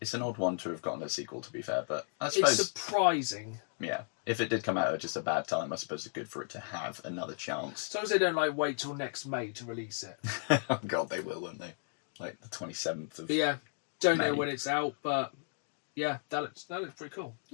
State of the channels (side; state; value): right; silent; digital silence